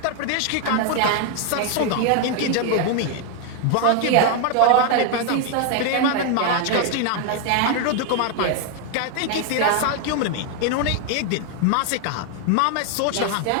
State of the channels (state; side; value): different; both; correlation 0.01